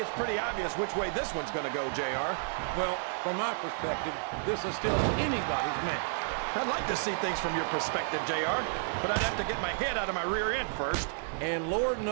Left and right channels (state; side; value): silent; left; digital silence